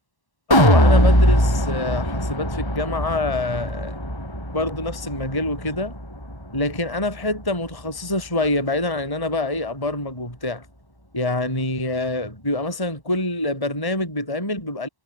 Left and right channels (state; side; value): late; right; 1.1 ms